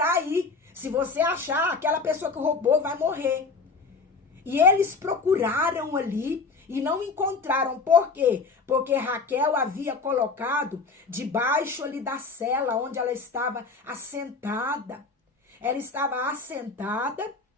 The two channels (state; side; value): quieter; right; 4.3 dB